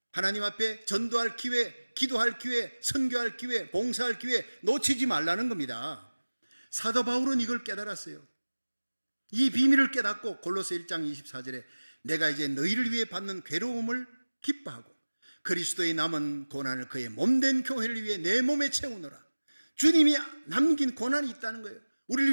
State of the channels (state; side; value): inverted; both; correlation -1.00